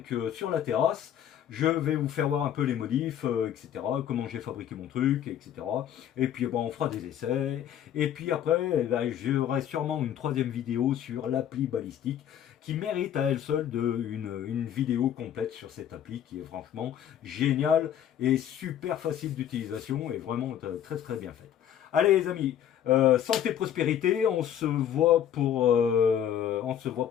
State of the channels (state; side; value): quieter; right; 10.1 dB